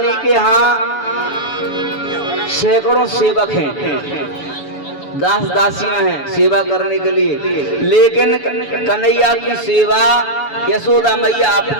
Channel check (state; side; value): late; right; 7.0 ms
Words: के यहाँ सैकड़ों सेवक हैं, दास दासियां हैं सेवा करने के लिए, लेकिन कन्हैया की सेवा यशोदा मैया